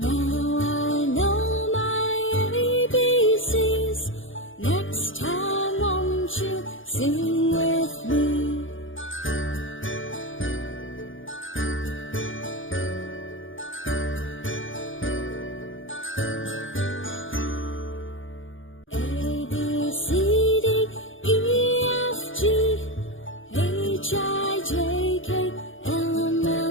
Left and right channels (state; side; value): late; right; 0.57 ms